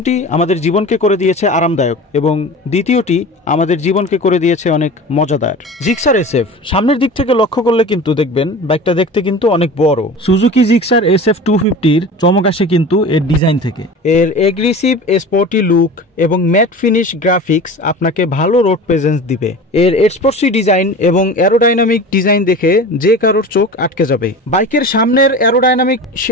আমাদের জীবনকে করে দিয়েছে আরামদায়ক এবং দ্বিতীয়টি আমাদের জীবনকে করে দিয়েছে অনেক মজাদার। জিক্সার SF সামনের দিক থেকে লক্ষ্য করলে কিন্তু দেখবেন বাইকটা দেখতে কিন্তু অনেক বড়। সুজুকি জিক্সার SF 250-র চমক আসে কিন্তু এর ডিজাইন থেকে। এর এগ্রেসিভ স্পোর্টি লুক এবং ম্যাট ফিনিশ গ্রাফিক্স আপনাকে ভালো রোড প্রেজেন্স দিবে। এর স্পোর্টসি ডিজাইন এবং অ্যারোডাইনামিক ডিজাইন দেখে যে কারোর চোখ আটকে যাবে। বাইকের সামনের অ্যারোডাইনামিক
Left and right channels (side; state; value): both; normal; correlation 0.35